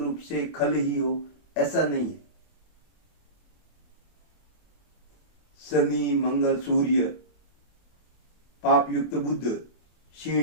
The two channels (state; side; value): late; right; 24 ms